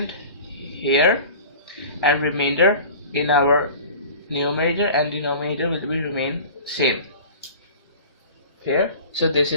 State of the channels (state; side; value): inverted; both; correlation -0.40